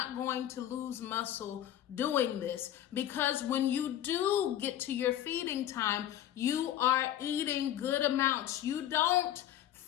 going to lose muscle doing this, because when you do get to your feeding time, you are eating good amounts. You don't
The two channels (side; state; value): right; quieter; 11.9 dB